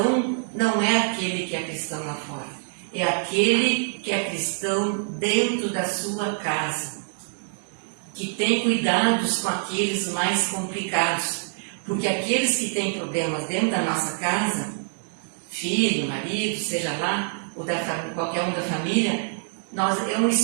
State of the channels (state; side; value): silent; left; digital silence